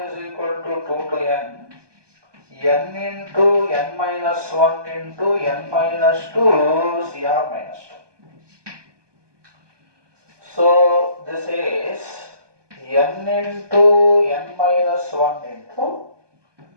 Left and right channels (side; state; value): left; late; 1.2 ms